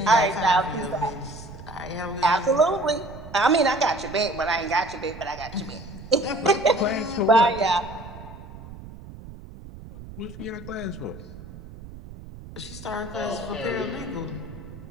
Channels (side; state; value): right; noise; rumble, 15 dB below the sound